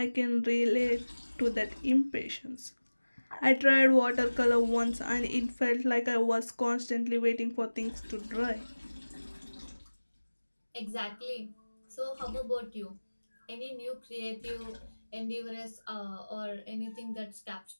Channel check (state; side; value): inverted; both; correlation -1.00